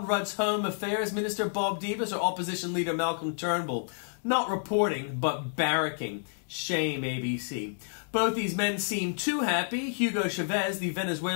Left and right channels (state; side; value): silent; right; digital silence